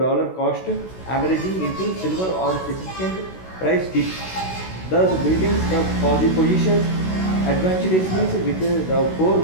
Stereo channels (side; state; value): right; late; 16 ms